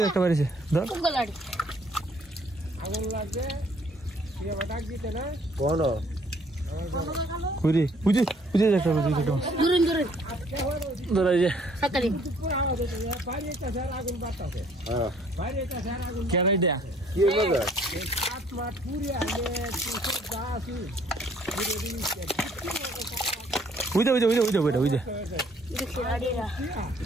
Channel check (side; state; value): both; normal; correlation 0.61